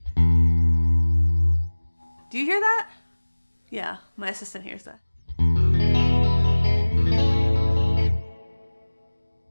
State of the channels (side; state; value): both; inverted; correlation -1.00